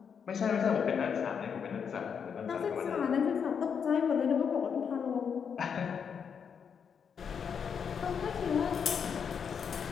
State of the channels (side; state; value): right; quieter; 6.9 dB